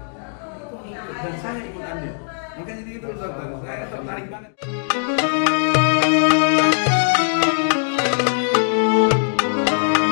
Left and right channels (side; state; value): right; silent; digital silence